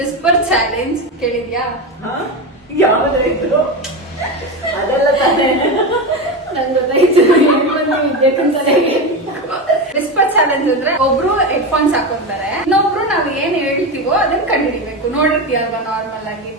whisper challenge. ಕೇಳಿದ್ಯಾ? ಯಾವ್ದಾಯ್ತು ಅದೆಲ್ಲ ತಾನೇ ನನ್ ಗೊತ್ತಾಯ್ತು. ವಿದ್ಯಾಕಂತಾನೆ ವಿಸ್ಪರ್ ಚಾಲೆಂಜ್ ಅಂದ್ರೆ ಒಬ್ರು ಹೆಡ್ಫೋನ್ಸ್ ಹಾಕೊಂತಾರೆ, ಇನ್ನೊಬ್ರು ನಾವ್ ಏನ್ ಹೇಳ್ತೀವೋ ಅದನ್ನ ಕಂಡುಹಿಡಿಬೇಕು. ನೋಡಿರ್ತೀಯಲ್ವಾ ನಾರ್ಮಲ್ ಆಗಿ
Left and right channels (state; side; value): normal; both; correlation 0.18